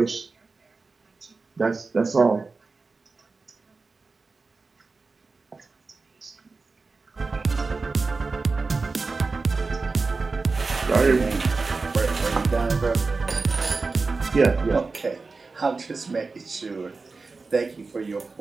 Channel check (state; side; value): quieter; left; 4.0 dB